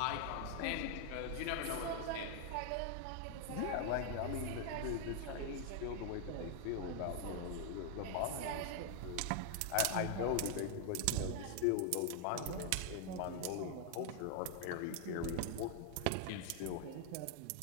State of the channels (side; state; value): both; different; correlation 0.00